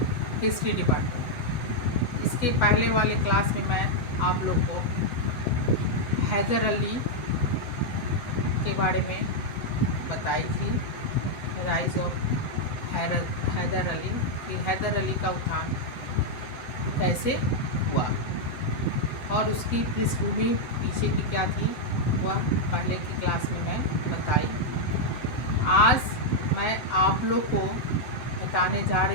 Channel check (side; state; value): right; late; 7.7 ms